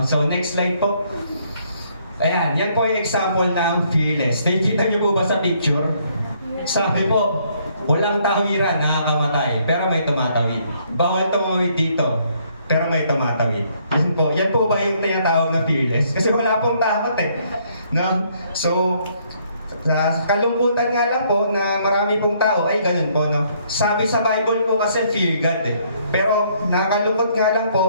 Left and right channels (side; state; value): both; inverted; correlation -0.67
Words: So next slide po. Ayan, yan po yung example ng fearless. Nakikita niyo po ba sa picture? Sabi po, walang tawiran nakakamatay, pero may tumatawid. Bawal tumawid dito, pero may tumatawid. Yan po ba yung tinatawag na fearless? Kasi wala pong takot eh. No? So, sa kalungkutan nga lang po na marami pong tao ay ganun po, no? Sabi sa Bible po kasi fear God eh. Pero nakakalungkot nga lang